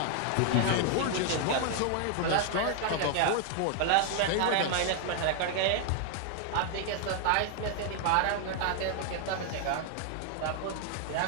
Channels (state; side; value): different; both; correlation 0.00